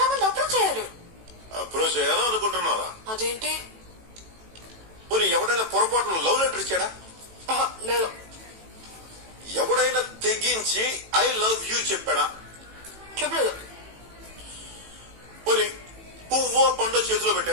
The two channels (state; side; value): late; left; 18 ms